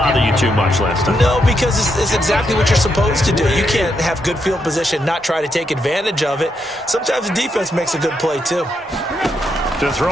you too much last time? No, because it's exactly what you're supposed to do. You can't have good field position, not try to take advantage of it. Sometimes the defense makes a good play, too. To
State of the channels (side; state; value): both; normal; correlation 0.80